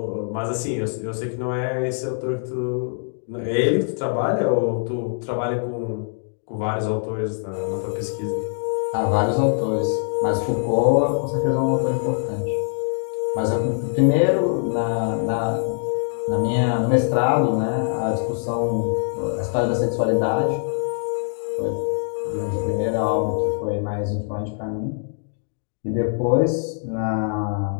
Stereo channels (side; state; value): right; silent; digital silence